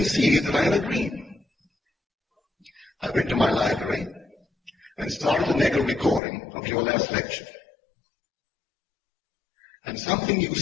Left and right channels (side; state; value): right; drops out; at 6.2 s